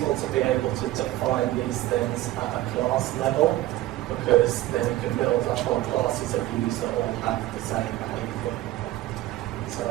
to be able to define these things at a class level, because then you can build up on classes of views that all have the same behavior. So,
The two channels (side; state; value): left; quieter; 15.9 dB